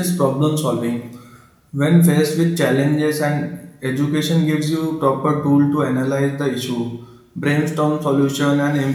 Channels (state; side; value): identical; both; correlation 1.00